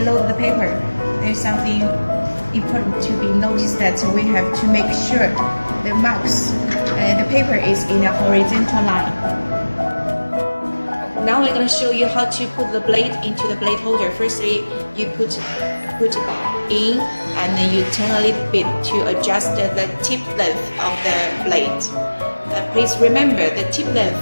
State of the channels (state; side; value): inverted; both; correlation -1.00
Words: the paper, there's something important to be noticed, that we have to make sure the marks, the paper is in a horizontal line. Now we're going to show you how to put the blade into the blade holder. Firstly, you put it in, and then you turn a little bit to adjust the tip length of the blade. Please remember the tip length